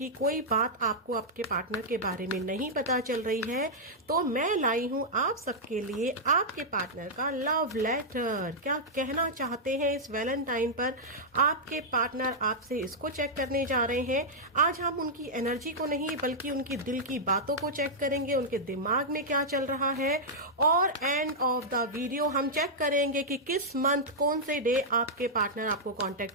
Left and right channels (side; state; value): both; normal; correlation -0.07